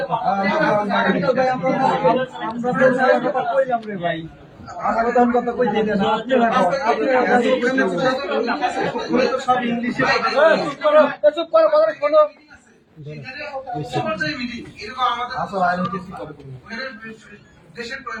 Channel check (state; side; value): identical; both; correlation 1.00